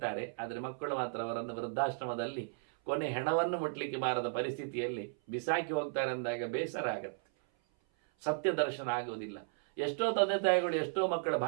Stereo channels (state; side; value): silent; left; 54 dB below the other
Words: ಆದರೆ ಮಕ್ಕಳು ಮಾತ್ರ ಅವರನ್ನು ವೃದ್ಧಾಶ್ರಮದಲ್ಲಿ ಕೊನೆ ಹೆಣವನ್ನು ಮುಟ್ಲಿಕ್ಕೆ ಬಾರದ ಪರಿಸ್ಥಿತಿಯಲ್ಲಿ ಬಿಸಾಕಿ ಹೋಗ್ತಾರೆ ಅಂದಾಗ ಬೇಸರ ಆಗತ್ತೆ. ಸತ್ಯ ದರ್ಶನ ಆಗುವುದಿಲ್ಲ. ಎಷ್ಟೋ ತಂದೆ ತಾಯಿಗಳು ಎಷ್ಟೋ ಮಕ್ಕಳ